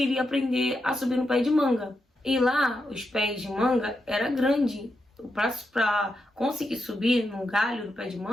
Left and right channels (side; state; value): both; normal; correlation 0.85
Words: aprender a subir no pé de manga. E lá, os pés de manga era grande. Pra conseguir subir num galho do pé de